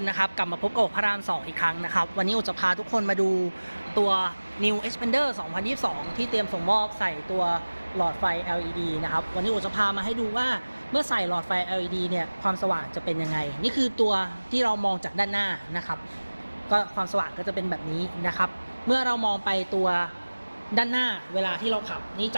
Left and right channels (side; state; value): both; inverted; correlation -1.00